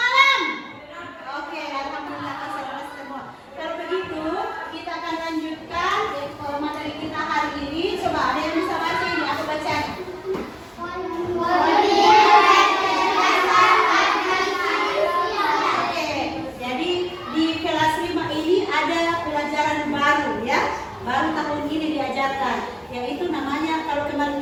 Oke, alhamdulillah konsentrasi semua. Kalau begitu, kita akan lanjutkan materi kita hari ini. Coba ada yang bisa baca ini? Aku baca. Oke, jadi di kelas 5 ini ada pelajaran baru ya. Baru tahun ini diajarkan, yaitu namanya kalau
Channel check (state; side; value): identical; both; correlation 1.00